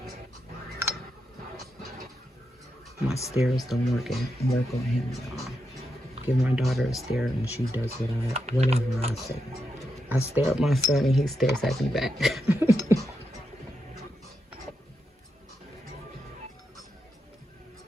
My stairs don't work on him, y'all. give my daughter a stare and she does whatever I say. I stare at my son and he stares at me back.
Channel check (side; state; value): both; normal; correlation 0.85